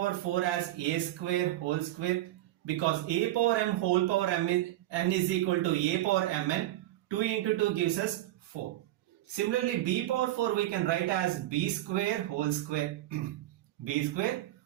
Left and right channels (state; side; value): quieter; left; 15.0 dB